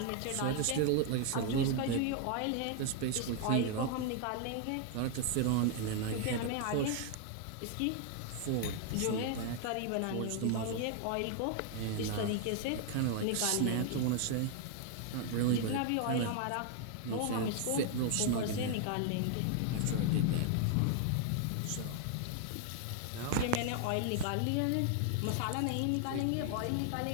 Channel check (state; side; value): different; both; correlation 0.00